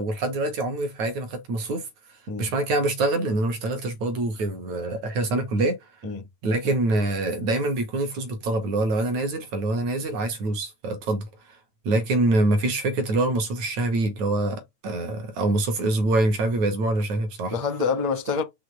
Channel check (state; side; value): late; left; 9.1 ms